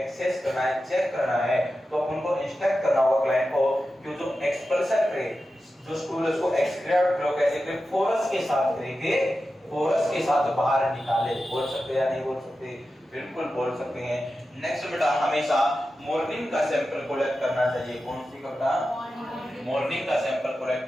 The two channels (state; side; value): normal; both; correlation 0.92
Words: करना है, चेक करना है, तो अपन को इंस्ट्रक्ट करना होगा क्लाइंट को कि जो एक्सपल्शन करे जो स्टूल है उसको एक्सक्रीट लो कैसे करें? फोरस के साथ करेंगे, फोरस के साथ बाहर निकाले। बोल सकते हैं या नहीं बोल सकते? बिल्कुल बोल सकते हैं। नेक्स्ट बेटा हमेशा मॉर्निंग का सैंपल कलेक्ट करना चाहिए। कौन सी का बेटा? मॉर्निंग का सैंपल कलेक्ट